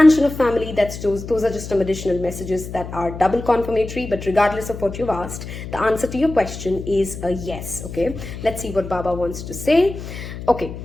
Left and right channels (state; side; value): noise; left; hum, 10 dB below the sound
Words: of family, those are just some additional messages that are double confirmatory. But regardless of what you've asked, the answer to your question is a yes, okay? Let's see what Baba wants to say. Okay.